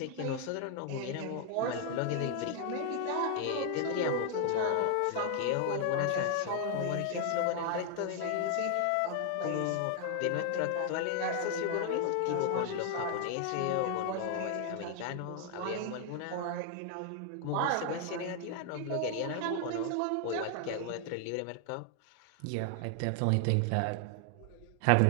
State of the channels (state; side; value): different; both; correlation 0.00